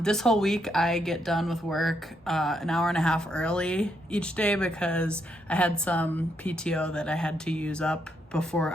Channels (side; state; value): both; normal; correlation 0.77